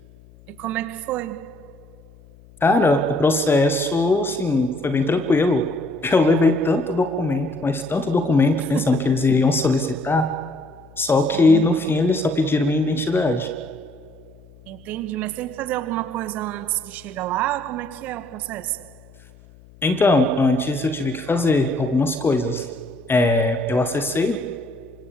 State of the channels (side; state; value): left; noise; hum, 25 dB below the sound